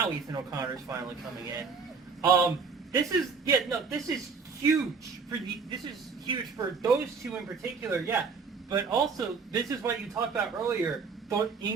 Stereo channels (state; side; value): quieter; left; 5.1 dB